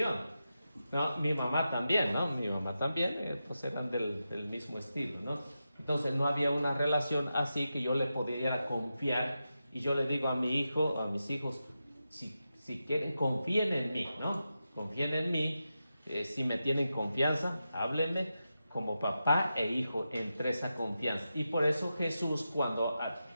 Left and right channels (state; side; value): inverted; both; correlation -0.89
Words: No, mi mamá también, ¿no? Mi mamá también, pues eran del mismo estilo, ¿no? Entonces no había una relación así que yo le pudiera confiar y yo le digo a mi hijo, a mis hijos, si quieren, confíen en mí, ¿no? Confíen en mí, si me tienen confianza, háblenme como papá e hijo entre esa confianza. Y por eso Jesús cuando